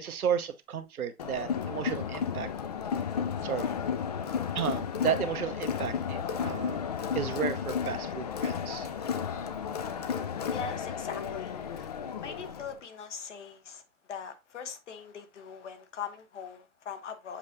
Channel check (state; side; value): normal; both; correlation -0.10